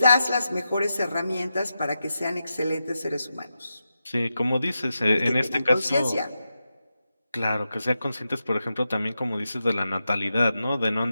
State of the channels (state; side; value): inverted; both; correlation -0.89